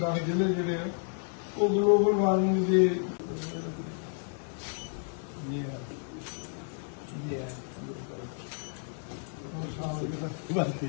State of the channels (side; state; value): right; silent; 57 dB below the other